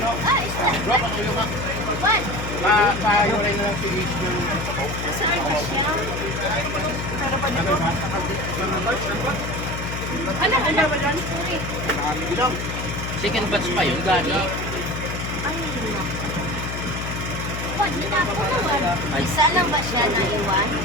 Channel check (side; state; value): left; noise; hum, 5 dB below the sound